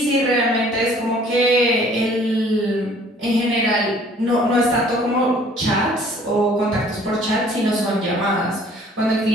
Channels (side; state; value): both; normal; correlation 0.55